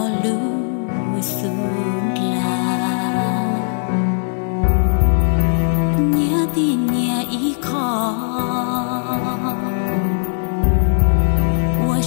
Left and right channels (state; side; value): silent; right; 67 dB below the other